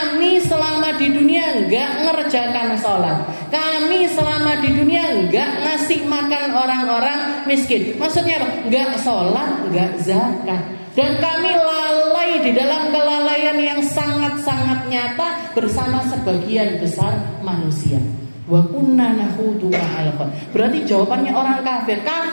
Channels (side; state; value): both; inverted; correlation -1.00